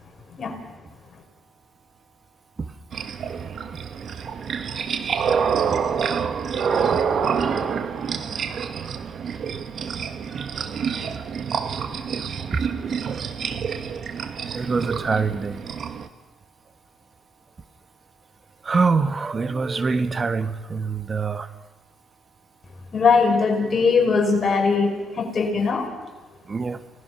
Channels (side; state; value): both; normal; correlation 0.77